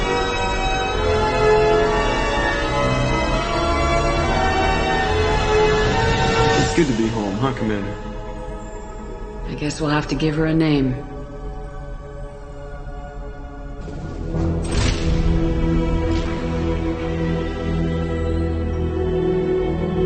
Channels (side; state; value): both; identical; correlation 1.00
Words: Good to be home, huh, Commander? I guess we'll have to give her a name.